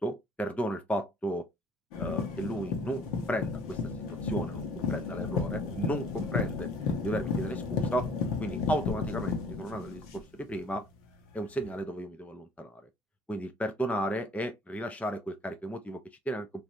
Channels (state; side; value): normal; both; correlation 0.55